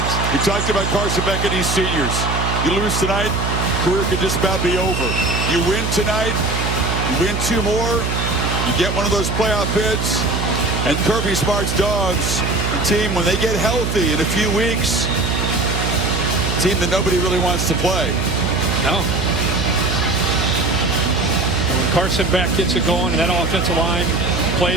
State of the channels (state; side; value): noise; right; hum, 2 dB below the sound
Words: We talked about Carson Beck and these seniors. You lose tonight, career could just about be over. You win tonight, you win 2 more, you get one of those playoff bids. And Kirby Smart's Dogs, a team, when they get healthy in a few weeks, a team that nobody really wants to play. No. When Carson Beck gets it going and that offensive line